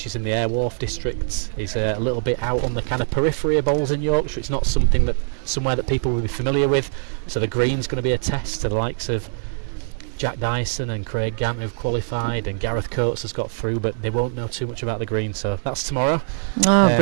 is in the Airwharf district, is a little bit out on the kind of periphery of bowls in Yorkshire. It's not somewhere that people will be familiar with, so the green's going to be a test to the likes of Jack Dyson and Craig Gant, who've qualified, and Gareth Coates has got through, but they won't know too much about the green. So that's tomorrow.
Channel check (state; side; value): silent; left; 64 dB below the other